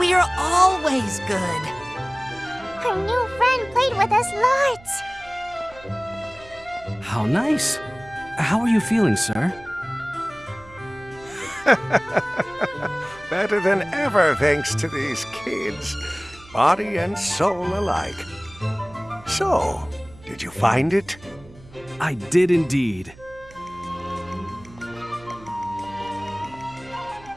always good. Our new friend played with us lots. How nice. How are you feeling, sir? Better than ever, thanks to these kids. Body and soul alike. So, did you find it? I did indeed.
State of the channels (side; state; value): right; noise; hum, 22 dB below the sound